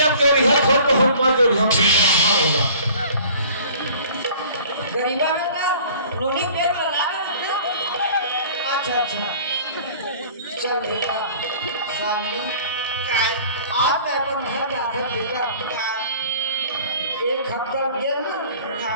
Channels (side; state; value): both; inverted; correlation -0.48